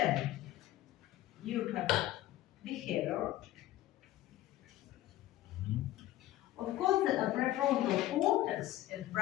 you have behavior. Of course, the prefrontal cortex and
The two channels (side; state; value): right; quieter; 14.8 dB